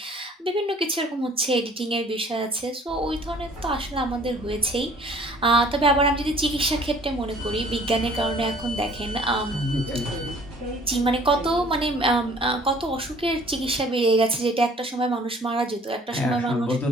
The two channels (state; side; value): normal; both; correlation 0.54